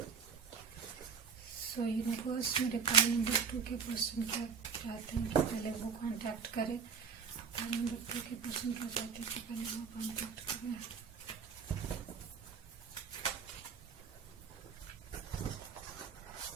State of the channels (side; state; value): left; quieter; 5.9 dB